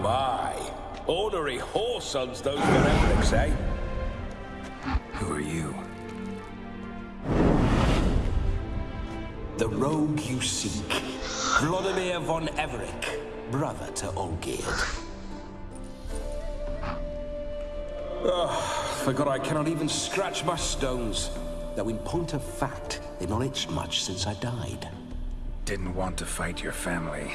Ornery whoresons those Verembrics, eh? Who are you? The rogue you seek. Vladimir von Everek, brother to Olgierd. Forgot I cannot even scratch my stones. Though in point of fact, they've not itched much since I died. Didn't want to fight your family.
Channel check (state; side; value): identical; both; correlation 1.00